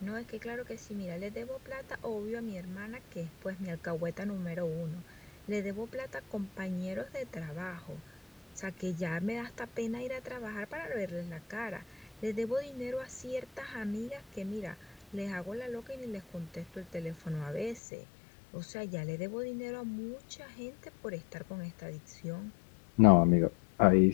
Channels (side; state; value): right; drops out; at 17.8 s